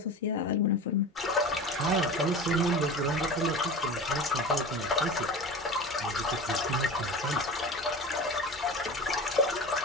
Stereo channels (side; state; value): both; normal; correlation 0.32